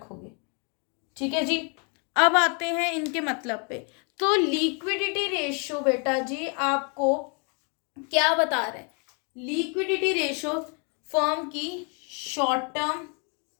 ठीक है जी। अब आते हैं इनके मतलब पे। तो लिक्विडिटी रेशियो बेटा जी आपको क्या बता रहा है, लिक्विडिटी रेशियो फर्म की short term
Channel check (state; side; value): quieter; right; 36.8 dB